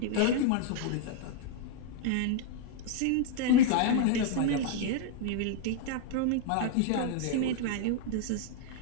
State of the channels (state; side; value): different; both; correlation -0.01